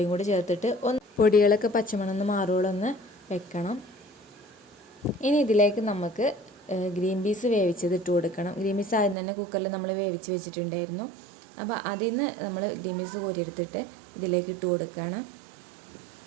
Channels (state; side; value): drops out; left; at 9.2 s